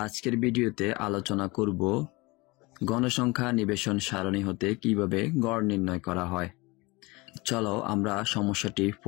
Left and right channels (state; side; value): quieter; right; 24.3 dB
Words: আজকের ভিডিওতে আলোচনা করব গণসংখ্যা নিবেশন সারণী হতে কিভাবে গড় নির্ণয় করা হয়। চলো আমরা সমস্যাটি